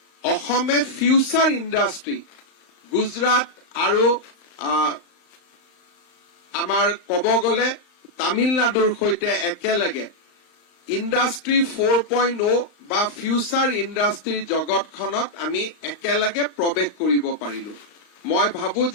অসমে ফিউচাৰ ইণ্ডাষ্ট্ৰী গুজৰাট আৰু আমাৰ ক'ব গ'লে তামিলনাডুৰ সৈতে একেলগে ইণ্ডাষ্ট্ৰী 4.0 বা ফিউচাৰ ইণ্ডাষ্ট্ৰীৰ জগতখনত আমি একেলগে প্ৰৱেশ কৰিব পাৰিলো মই ভাবো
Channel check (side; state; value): right; late; 35 ms